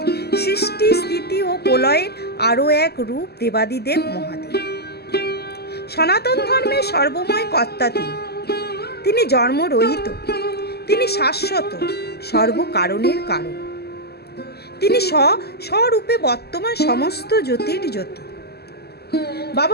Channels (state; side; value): late; right; 0.47 ms